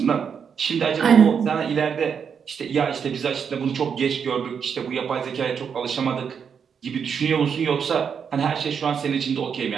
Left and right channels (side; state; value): left; quieter; 6.9 dB